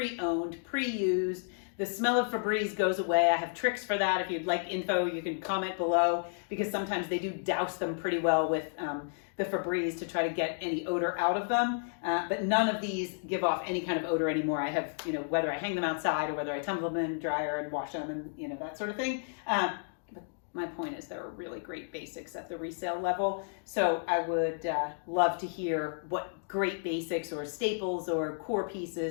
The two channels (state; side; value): silent; right; digital silence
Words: pre-used. The smell of Febreze goes away. I have tricks for that. If you'd like info, you can comment below, because sometimes they do douse them pretty well with the Febreze to try to get any odor out of them. But none of these give off any kind of odor anymore. I have, whether I hang them outside or whether I tumble them in the dryer and wash them and, that sort of thing. But my point is there are really great basics at the resale level. So I would love to hear what great basics or staples or core